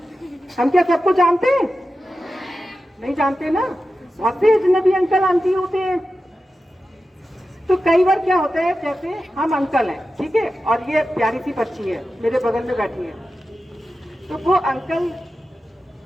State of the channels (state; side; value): normal; both; correlation 0.92